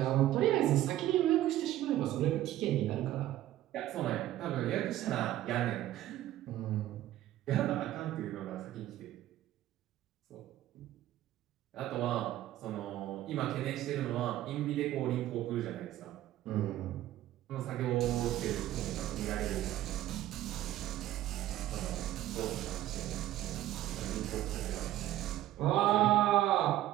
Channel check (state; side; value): quieter; left; 14.0 dB